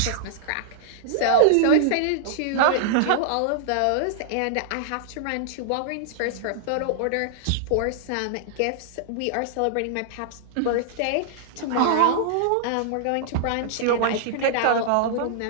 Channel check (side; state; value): both; different; correlation -0.01